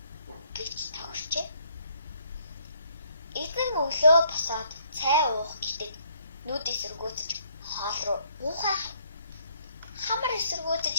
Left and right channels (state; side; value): inverted; both; correlation -0.67